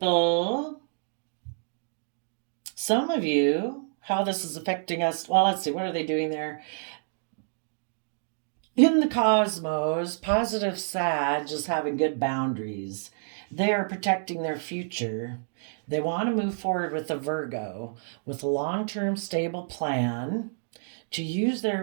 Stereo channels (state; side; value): silent; left; digital silence